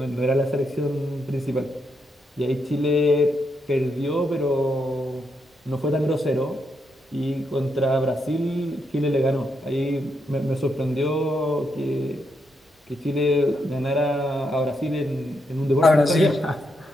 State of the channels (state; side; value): normal; both; correlation 0.80